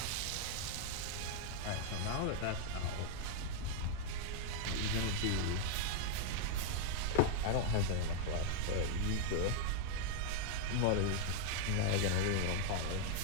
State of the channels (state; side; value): different; both; correlation 0.00